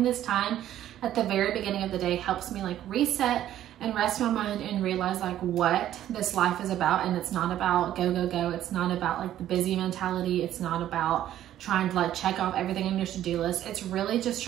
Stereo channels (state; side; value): quieter; left; 12.1 dB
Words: this time at the very beginning of the day helps me like reset and rest my mind and realize like what this life is about. And it's not about go. It's not about like the busy mentality. It's not about trying to like check off everything on your to-do list. It's really just